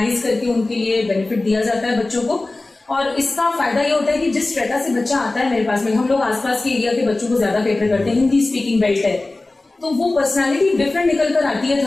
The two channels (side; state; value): right; quieter; 3.0 dB